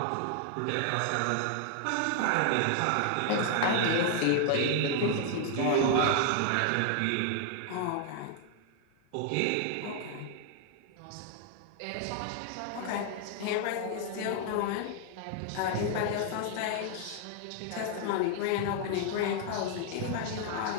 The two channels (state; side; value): different; both; correlation 0.00